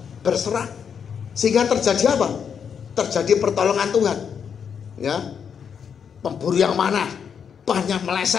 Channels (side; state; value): right; quieter; 7.2 dB